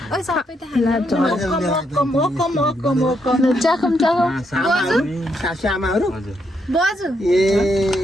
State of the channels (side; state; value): both; normal; correlation 0.78